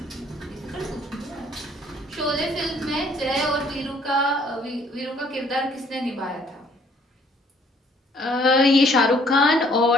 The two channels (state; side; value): normal; both; correlation 0.61